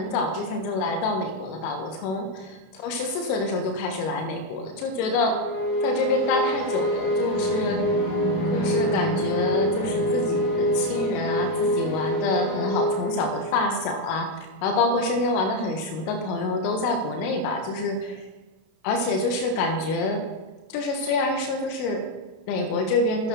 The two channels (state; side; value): late; right; 32 ms